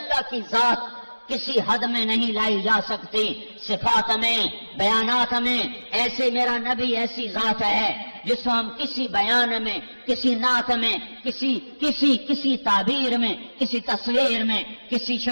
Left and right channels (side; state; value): both; inverted; correlation -1.00